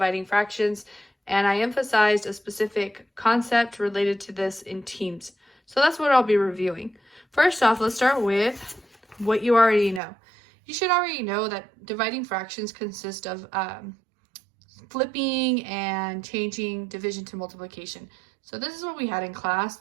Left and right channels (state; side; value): drops out; left; at 10.0 s